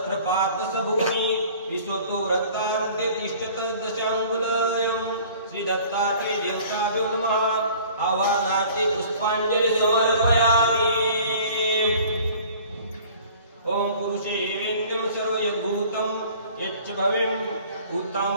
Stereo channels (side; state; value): both; inverted; correlation -0.49